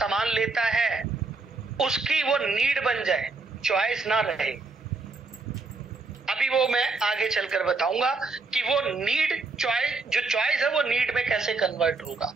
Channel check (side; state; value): left; quieter; 3.9 dB